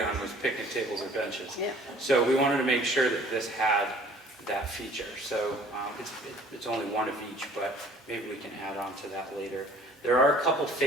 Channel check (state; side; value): normal; both; correlation 0.53